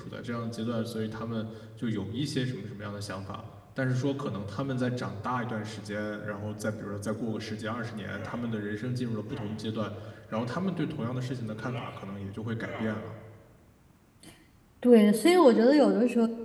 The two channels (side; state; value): both; identical; correlation 1.00